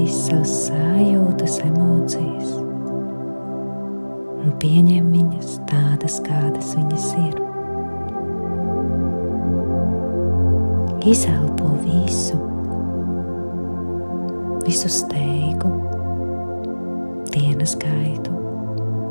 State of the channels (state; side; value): inverted; both; correlation -1.00